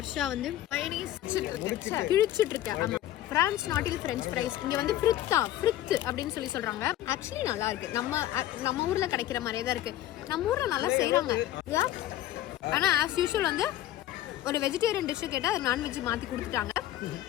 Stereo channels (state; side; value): quieter; right; 13.5 dB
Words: வந்து கிழிச்சிட்டு இருக்கேன். ஆமாம், பிரான்ஸ் நாட்டில் ஃப்ரெஞ்ச் ஃப்ரைஸ். இங்கே வந்து ஃப்ரித் அப்படின்னு சொல்கிறாங்க. ஆக்சுவலி நல்லா இருக்கு. நம்ம ஊரில் கிடைக்கிற மாதிரியே தான் இருக்கு. நம்ம ஊரில் நல்லா செய்கிறாங்க. ஆனால் ஆஸ் யூஷுவல் வந்து ஒரு வெஜிடேரியன் டிஷ்ஷு கேட்டால் அது நான்வெஜ் மாற்றி கொடுத்துட்டாங்க.